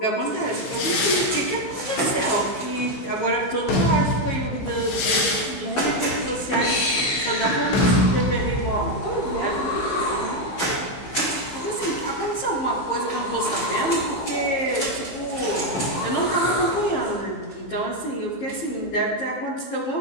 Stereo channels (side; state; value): right; late; 15 ms